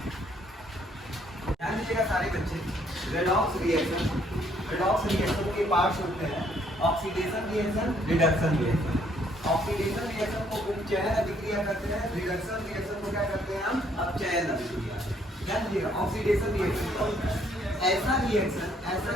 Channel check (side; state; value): both; normal; correlation 0.67